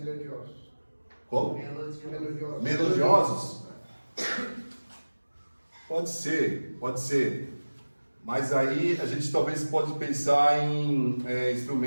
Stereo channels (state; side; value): inverted; both; correlation -1.00